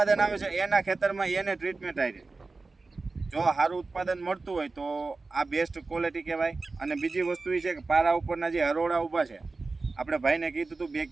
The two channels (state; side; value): quieter; left; 3.8 dB